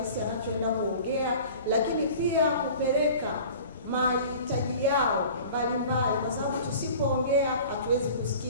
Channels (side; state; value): both; inverted; correlation -0.43